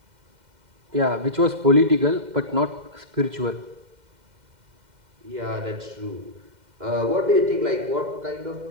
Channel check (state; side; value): late; left; 2.1 ms